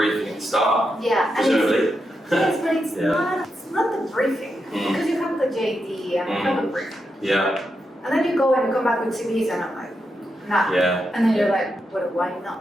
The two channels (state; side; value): normal; both; correlation 0.85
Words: at the start. Presumably. Yes, but it's not the briefing because you have the JD and you have a briefing. And then you go and come back with CVs and I'm like, nah. And then you're like, well, why